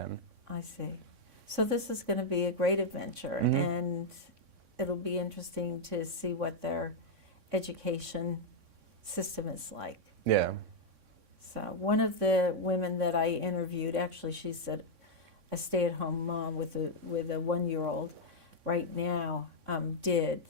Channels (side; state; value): left; late; 3.6 ms